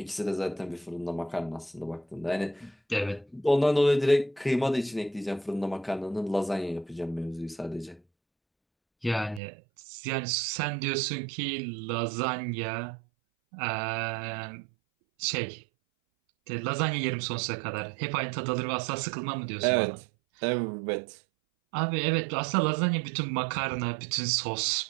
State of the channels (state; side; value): drops out; left; at 9.4 s